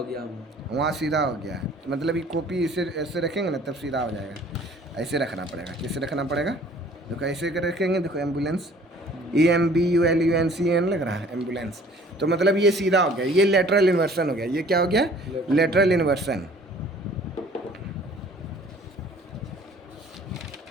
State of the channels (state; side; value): normal; both; correlation 0.53